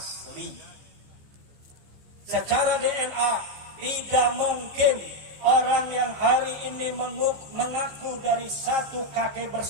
Secara DNA tidak mungkin orang yang hari ini mengaku dari satu kakek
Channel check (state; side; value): late; left; 15 ms